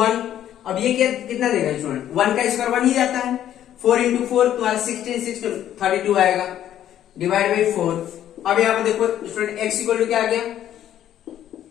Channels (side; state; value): right; quieter; 11.3 dB